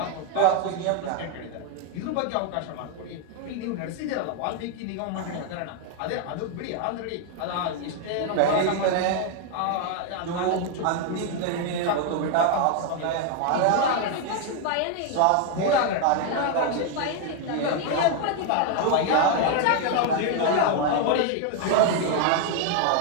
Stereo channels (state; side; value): different; both; correlation 0.00